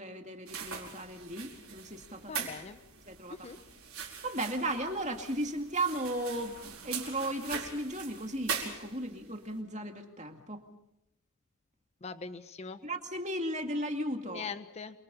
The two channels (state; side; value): normal; both; correlation 0.19